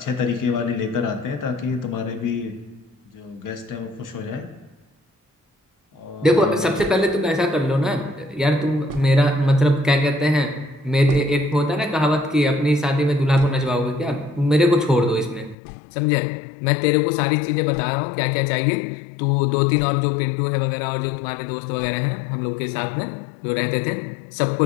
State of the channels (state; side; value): drops out; right; at 15.6 s